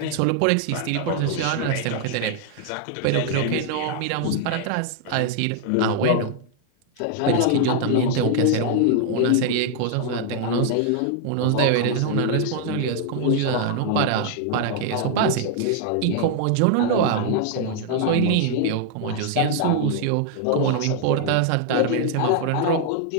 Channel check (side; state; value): both; different; correlation 0.00